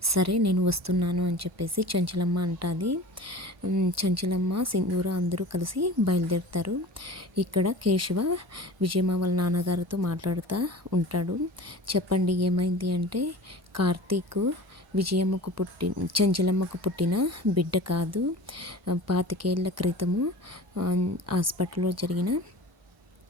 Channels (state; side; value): normal; both; correlation 0.38